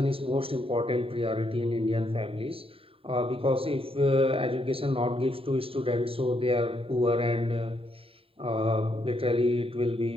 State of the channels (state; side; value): late; left; 0.27 ms